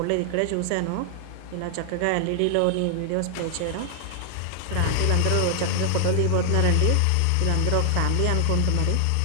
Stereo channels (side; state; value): both; different; correlation 0.00